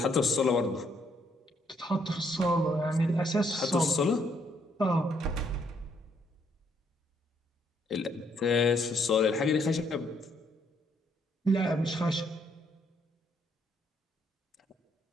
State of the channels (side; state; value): both; normal; correlation 0.71